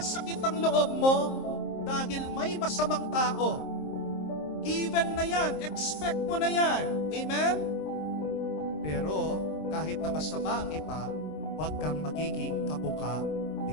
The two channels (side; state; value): right; late; 26 ms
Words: ang loob mo dahil may masamang tao. Given na yan, expect mo na yan. Amen? Pero kahit na masama ang iba, huwag kang magiging kabuka